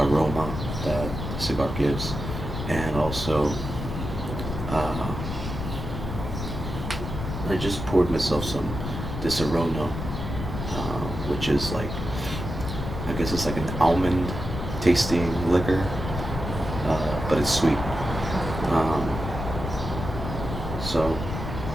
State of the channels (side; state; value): left; noise; rumble, 6 dB below the sound